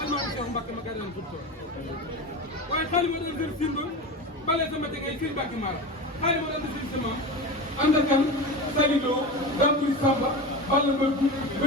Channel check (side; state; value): both; normal; correlation 0.26